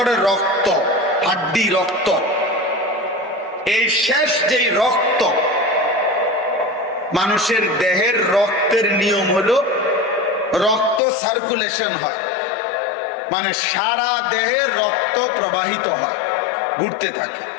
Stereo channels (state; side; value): drops out; right; at 11.0 s